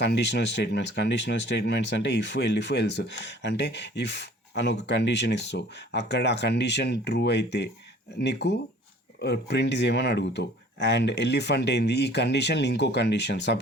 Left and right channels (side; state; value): both; normal; correlation 0.51